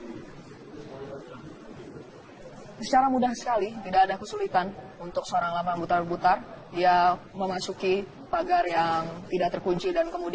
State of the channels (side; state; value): both; identical; correlation 1.00